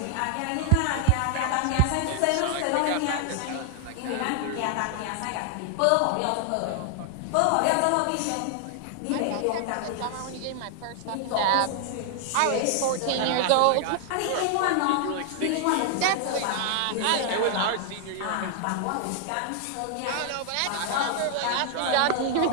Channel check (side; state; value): both; different; correlation 0.00